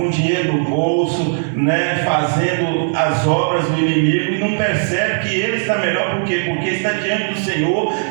dinheiro no bolso, né, fazendo as obras do inimigo, e não percebe que ele está melhor. Por quê? Porque está diante do Senhor,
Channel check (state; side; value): silent; left; 68 dB below the other